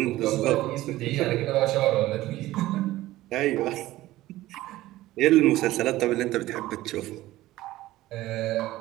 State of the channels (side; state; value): left; quieter; 16.4 dB